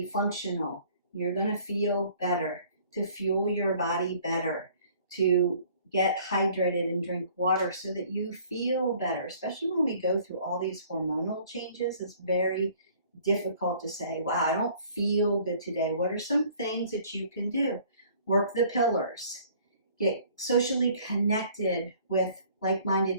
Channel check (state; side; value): inverted; both; correlation -0.55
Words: functional. You're going to feel better, to fuel your body better, to get hydrated and drink water so that you feel better, especially when we go through all these hormonal changes. It's very difficult to say, wow, I don't feel good today. What are some things that you can do? Work the pillars. Get socially connected with